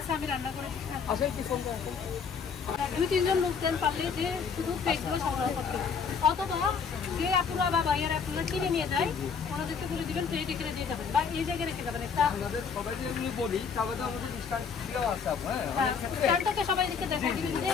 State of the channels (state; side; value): quieter; right; 6.1 dB